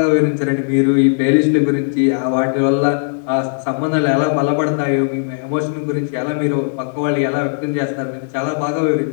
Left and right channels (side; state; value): right; silent; digital silence